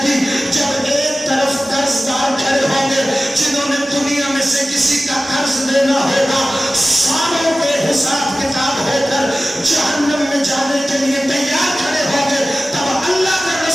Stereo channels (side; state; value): both; normal; correlation 0.96